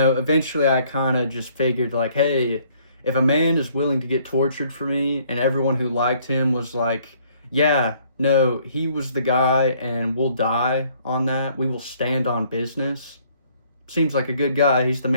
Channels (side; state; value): both; inverted; correlation -0.63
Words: I kind of just figured like, hey, if a man is willing to get tortured for me and everyone who liked him was like, yeah, no, he was the guy and we'll die on that, we will stand on business, seems like a good guy, he's the